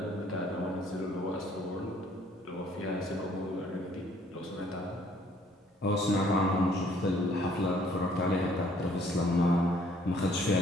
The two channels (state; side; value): normal; both; correlation 0.61